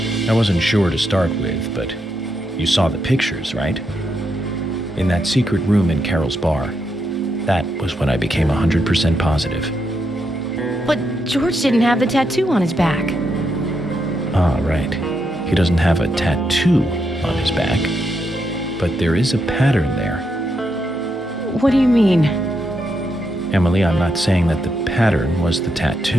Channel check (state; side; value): normal; both; correlation 0.81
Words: I wasn't sure to start with, but you saw the pictures, right? In that secret room in Carol's bar. That was when I became 100% positive. But George didn't have the tattoo on his back. Ah, right. He doesn't have a tattoo on his back, but there is a pattern there. What do you mean? Emily, I'm not saying that the pattern was the